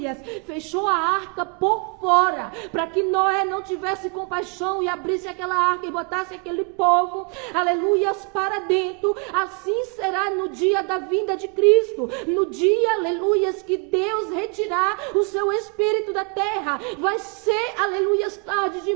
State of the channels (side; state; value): left; quieter; 36.9 dB